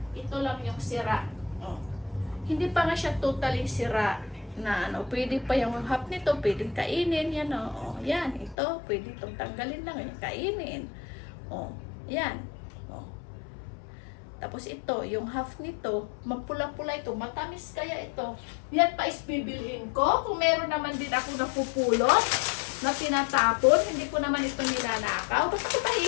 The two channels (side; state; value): right; drops out; at 8.6 s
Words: ito lang yung sira. Oh. Hindi pa nga siya totally sira na ano, pwede pa yung half nito, pwedeng kainin, yan o. Oh. Yan, ito, pwede itong tanggalin lang, yung kainin. Oh, yan. Oh. Tapos ito, yung half nito, mapula-pula ito, matamis kaya ito. Yan pa is bibilhin ko. Kung meron naman din ako napupulot, na tinatapon, hindi ko naman ito nilanakaw. Basta ko